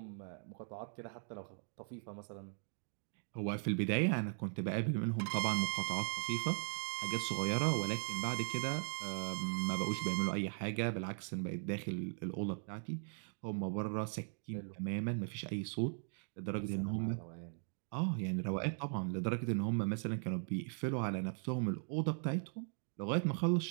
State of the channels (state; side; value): silent; left; 52 dB below the other